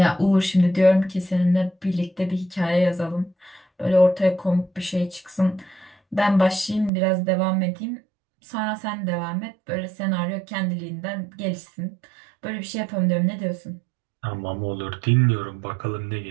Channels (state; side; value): drops out; left; at 6.9 s